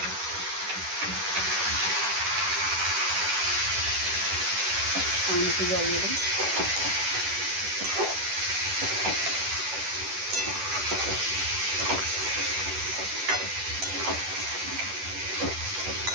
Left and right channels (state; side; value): late; left; 10 ms